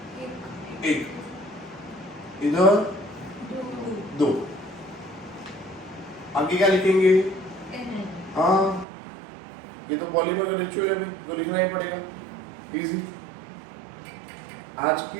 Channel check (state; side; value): drops out; left; at 8.8 s